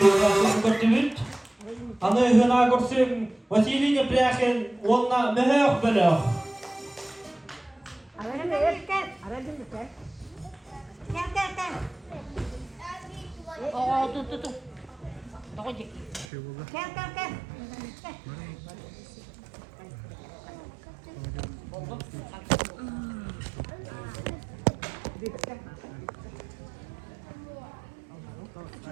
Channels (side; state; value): left; drops out; at 16.2 s